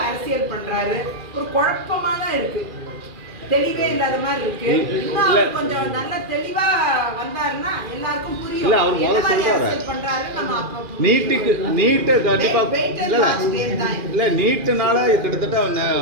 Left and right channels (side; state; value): left; late; 2.4 ms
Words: அரசியல் பண்றாரு. ஒரு குழப்பமா தான் இருக்கு, தெளிவே இல்லாத மாதிரி இருக்கு. இன்னும் அவர் கொஞ்சம் நல்ல தெளிவா வந்தாருன்னா எல்லாருக்கும் புரியும். இல்ல அவர் முதல்ல சொல்றாரு பண்றாரு. நம்ம நீட்டை கண்டிப்பா இல்ல நீட்டுனால கிட்டத்தட்ட